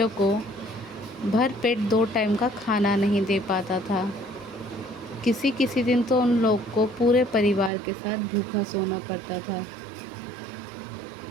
को भर पेट 2 टाइम का खाना नहीं दे पाता था। किसी किसी दिन तो उन लोग को पूरे परिवार के साथ भूखा सोना पड़ता था,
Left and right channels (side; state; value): left; drops out; at 7.7 s